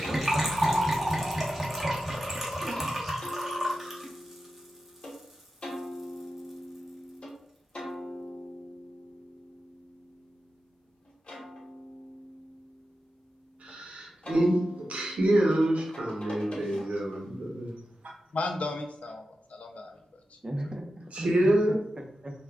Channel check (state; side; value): normal; both; correlation 0.91